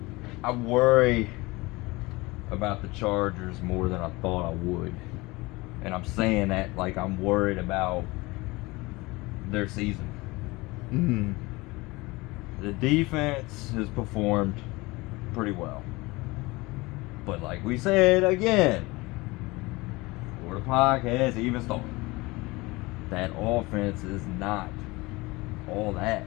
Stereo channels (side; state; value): right; quieter; 22.7 dB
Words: I worry about the Chargers more than I thought I would, and I'm saying that like I'm worried about their season. Mhm. The defense has performed pretty well. But like we said again, before the podcast even started, that offense is not all that.